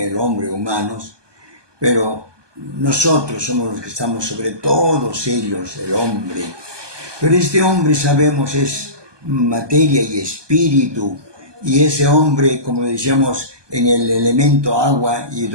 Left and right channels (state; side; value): late; left; 1.2 ms